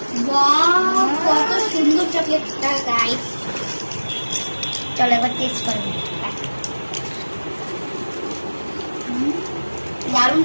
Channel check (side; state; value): both; inverted; correlation -1.00